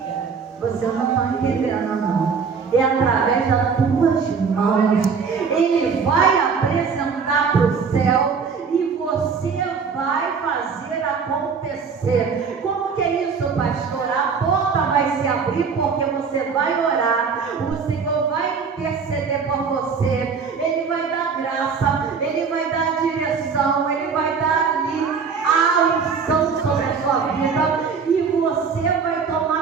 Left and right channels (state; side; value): quieter; left; 5.7 dB